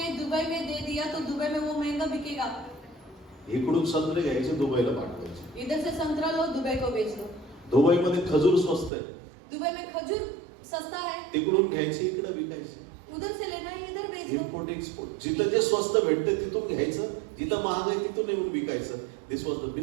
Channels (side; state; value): left; drops out; at 8.9 s